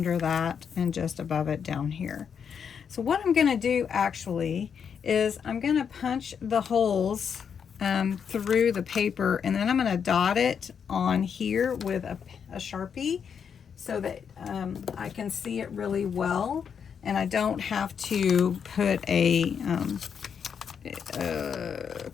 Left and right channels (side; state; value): right; quieter; 7.2 dB